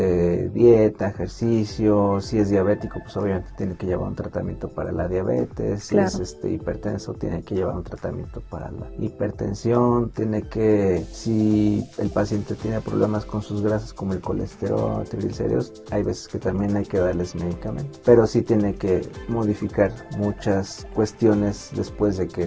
dieta, ejercicio. Si es diabético, pues obviamente tiene que llevar un tratamiento para la diabetes. Si es hipertenso, tiene que llevar un tratamiento para la hipertensión. Si el paciente tiene problemas con sus grasas como el colesterol, triglicéridos, hay veces que también hay que darles medicamento, pero sí tiene que modificar muchas cuestiones después de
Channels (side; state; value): both; identical; correlation 1.00